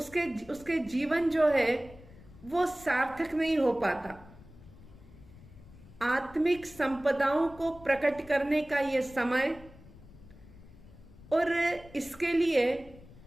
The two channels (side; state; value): left; noise; rumble, 21 dB below the sound